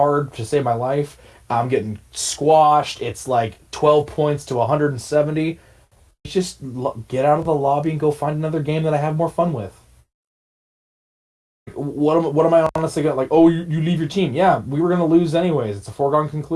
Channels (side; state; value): both; identical; correlation 1.00